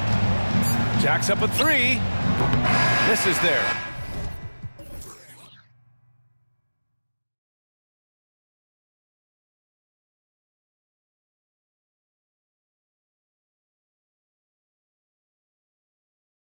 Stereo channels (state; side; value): inverted; both; correlation -1.00